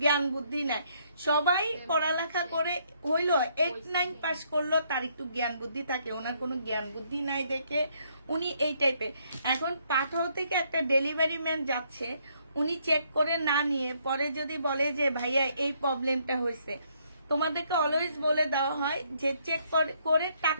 জ্ঞান বুদ্ধি নাই। সবাই পড়ালেখা করে হইলো 8-9 পাস করলো, তার একটু জ্ঞান বুদ্ধি থাকে, ওনার কোনো জ্ঞান বুদ্ধি নাই দেখে উনি এই টাইপের। এখন পাঠাও থেকে একটা ডেলিভারি ম্যান যাচ্ছে, উনি চেক করে না নিয়ে পরে যদি বলে যে ভাইয়া এই প্রবলেমটা হয়েছে, তোমাদেরকে অলওয়েজ বলে দেওয়া হয় যে চেক করে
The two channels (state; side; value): inverted; both; correlation -0.70